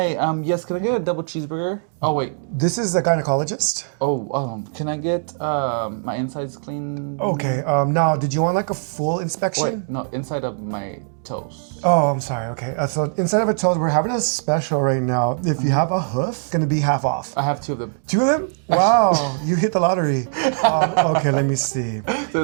yes, can I get a double cheeseburger? Oh, wait. This is a gynecologist. Oh, can I get, my insides clean? Okay, now, did you want like a full inspection? Wait, no, inside of my toes. Oh, I'm sorry, okay. So inside of a toes, we're having a special right now. If you have a hoof, it's gonna be half off. I have 2 of them. 2 of them? Wow, you hit the lottery. Okay, let me see. So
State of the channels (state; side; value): silent; left; digital silence